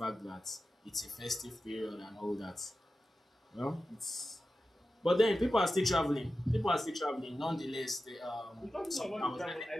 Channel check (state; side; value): normal; both; correlation 0.93